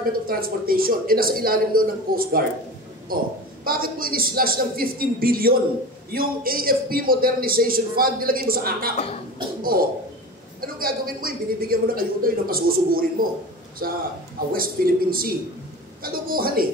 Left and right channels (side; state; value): both; normal; correlation 0.32